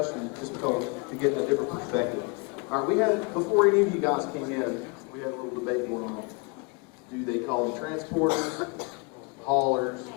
just because to get a different perspective. All right, we had, before any of you guys came in, we had a little debate going on. Do they call them transporters, haulers,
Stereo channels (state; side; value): quieter; right; 32.3 dB